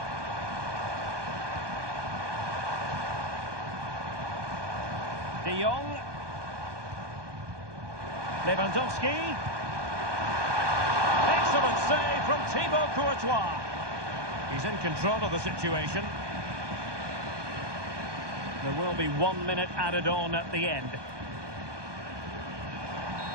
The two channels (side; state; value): left; late; 1.2 ms